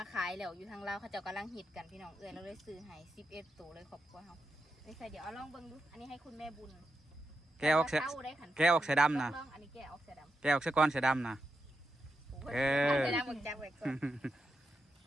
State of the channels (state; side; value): normal; both; correlation 0.87